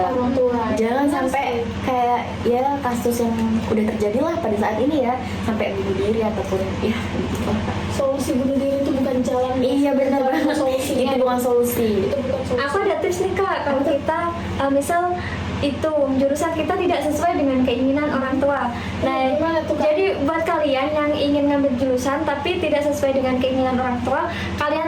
Orang tua. Jangan Benar sampai sekali. kayak ya kasus yang udah terjadi lah pada saat ini ya, sampai bunuh diri ataupun ya gitu lah, Kak. Solusi bunuh diri itu bukan jalan. Iya benar Bukan banget. solusinya. Itu bukan solusi. Itu bukan solusi. Aku ada tips nih Kak, kalau kita misal itu jurusan kita tidak sesuai dengan keinginan orang tua. Nah, Gimana tuh, Kak? jadi buat kalian yang ingin ngambil jurusan tapi tidak sesuai dengan keinginan orang tua,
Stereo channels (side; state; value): both; identical; correlation 1.00